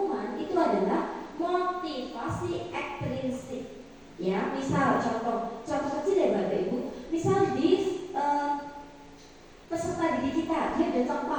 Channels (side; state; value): both; identical; correlation 1.00